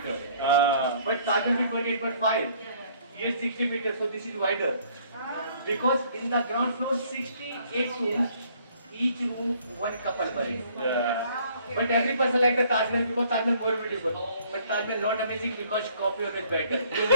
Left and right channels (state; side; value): inverted; both; correlation -0.61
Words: But Taj Mahal is 28.5. Here 60 meter. So this is wider. Because in the ground floor 68 rooms. Each room one couple buried. But every person like the Taj Mahal because Taj Mahal more beautiful. But Taj Mahal not amazing because copy always better.